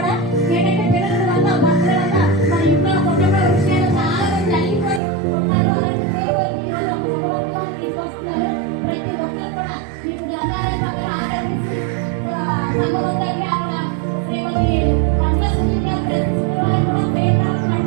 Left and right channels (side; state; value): left; drops out; at 5.0 s